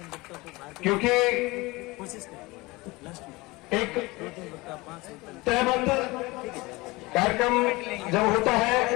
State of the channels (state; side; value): quieter; right; 22.7 dB